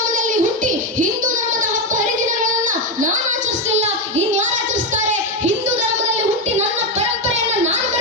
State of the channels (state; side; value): normal; both; correlation 0.09